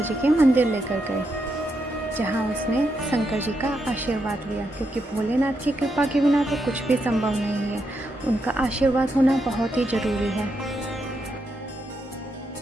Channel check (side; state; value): both; normal; correlation 0.81